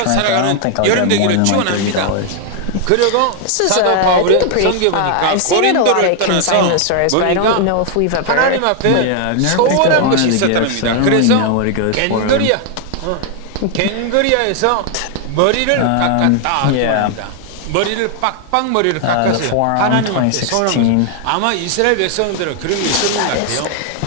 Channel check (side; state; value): both; different; correlation 0.00